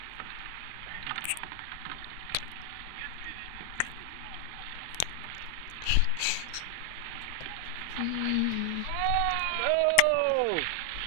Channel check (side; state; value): both; different; correlation 0.00